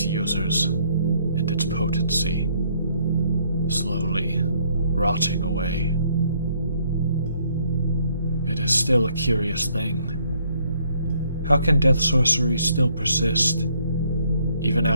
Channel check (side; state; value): both; inverted; correlation -0.67